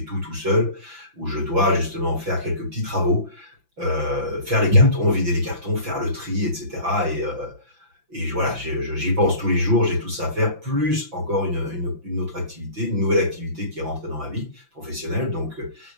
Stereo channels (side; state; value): left; late; 5.9 ms